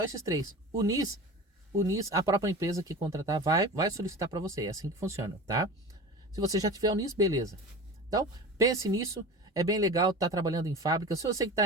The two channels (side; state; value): both; normal; correlation 0.33